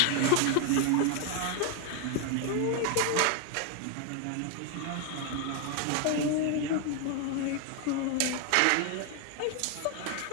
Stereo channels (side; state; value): both; different; correlation 0.01